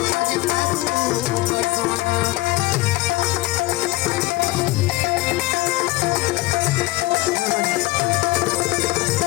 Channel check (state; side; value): quieter; right; 19.2 dB